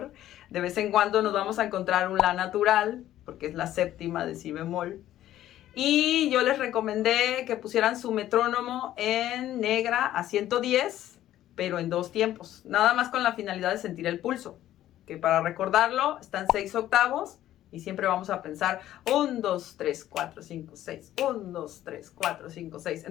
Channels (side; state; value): right; quieter; 13.0 dB